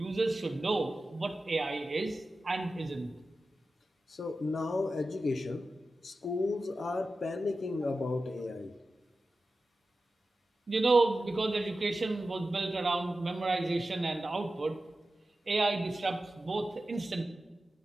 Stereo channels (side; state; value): both; normal; correlation 0.93